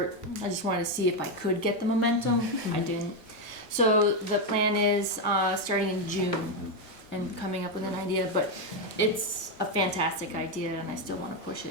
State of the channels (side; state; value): both; normal; correlation 0.06